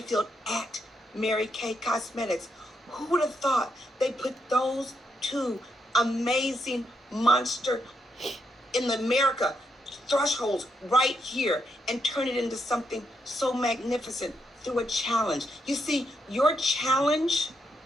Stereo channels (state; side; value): normal; both; correlation 0.80